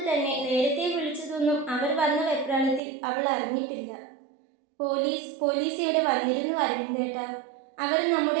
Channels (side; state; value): left; drops out; at 2.8 s